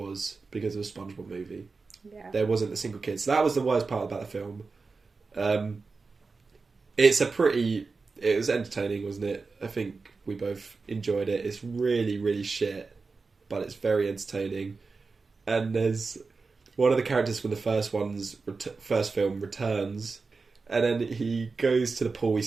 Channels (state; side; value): quieter; left; 4.3 dB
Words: because of a SpongeBob movie. Yeah. There wasn't a single kid. So that was the worst part about the film. It was entertaining, wasn't it? I think we both enjoyed it. It's really, really shit, but it's very entertaining. And there's one of the characters from the first film returns, and then he goes to the pool.